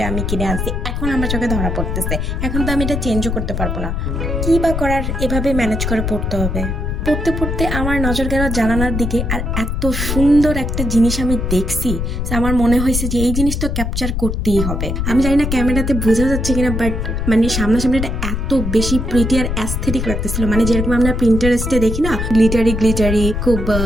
আমি কিনে আনছি, এখন আমার চোখে ধরা পড়তেছে। এখন তো আমি এটা চেঞ্জও করতে পারবো না, কি বা করার, এভাবে ম্যানেজ করে পড়তে হবে। পড়তে পড়তে আমার নজর গেল জানালার দিকে, আর এত সুন্দর একটা জিনিস আমি দেখছি, আমার মনে হয়েছে যে এই জিনিস তো ক্যাপচার করতেই হবে। আমি জানি না ক্যামেরাতে বোঝা যাচ্ছে কিনা, বাট মানে সামনাসামনি এটা এত বেশি প্রিটি আর অ্যাস্থেটিক লাগতেছিল। মানে যেরকম আমরা প্রিন্টারেস্টে দেখি না, গ্লিটারি খুব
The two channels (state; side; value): noise; left; rumble, 2 dB below the sound